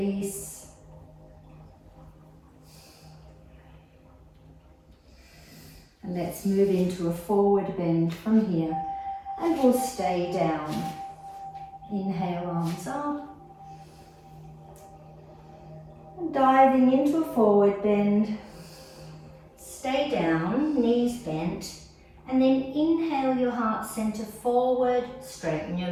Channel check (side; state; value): both; identical; correlation 1.00